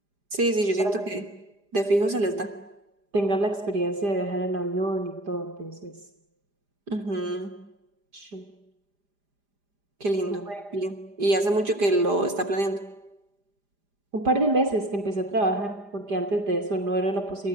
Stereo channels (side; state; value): left; late; 4.9 ms